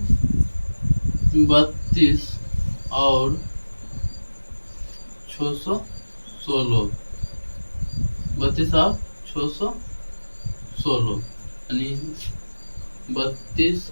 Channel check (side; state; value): both; inverted; correlation -1.00